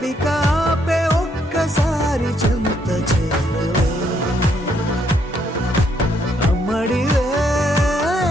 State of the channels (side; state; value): both; normal; correlation 0.72